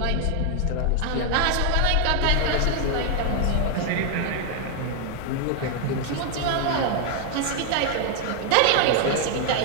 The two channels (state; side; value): different; both; correlation 0.00